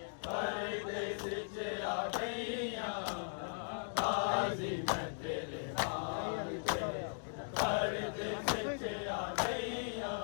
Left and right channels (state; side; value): silent; right; digital silence